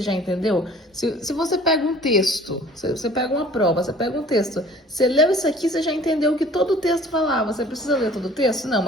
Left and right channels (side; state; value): both; normal; correlation 0.50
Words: já entendeu? Se você pega um texto, você pega uma prova, você pega um texto, você leu isso aqui, você já entendeu o que todo o texto falava. Você precisa ler todo o texto? Não,